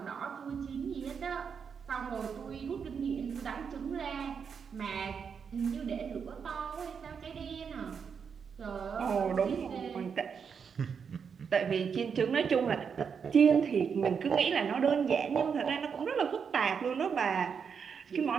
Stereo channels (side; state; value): left; quieter; 6.5 dB